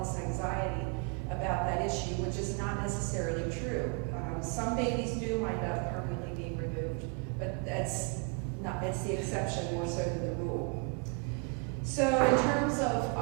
this anxiety about that issue, which is not necessarily true. Some babies do wind up permanently being removed, but that's it's the exception more so than the rule. So in terms of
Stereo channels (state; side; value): quieter; left; 34.0 dB